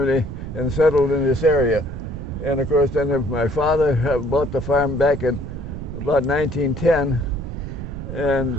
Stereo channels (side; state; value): right; noise; rumble, 8 dB below the sound